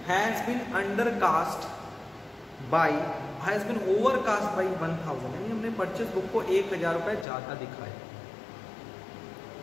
has been undercast by has been overcast by 1000, यानी हमने परचेज बुक को 1000 रुपए ज्यादा दिखाया।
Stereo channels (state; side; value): drops out; right; at 7.2 s